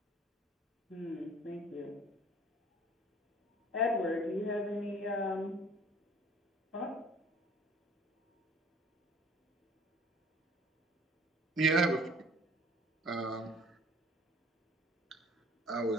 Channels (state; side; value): normal; both; correlation 0.51